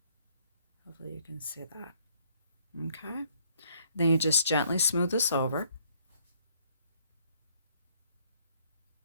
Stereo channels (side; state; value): both; inverted; correlation -0.65